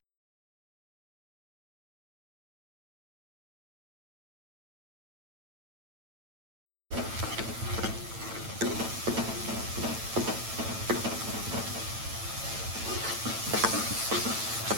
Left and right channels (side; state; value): left; late; 9.0 ms